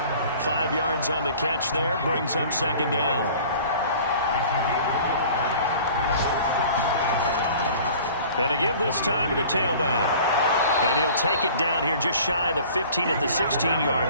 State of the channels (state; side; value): inverted; both; correlation -0.46